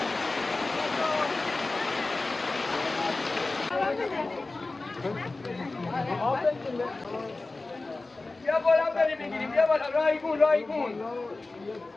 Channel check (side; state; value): right; quieter; 3.3 dB